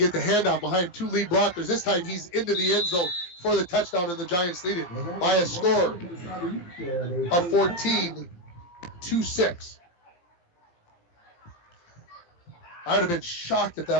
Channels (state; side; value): late; right; 17 ms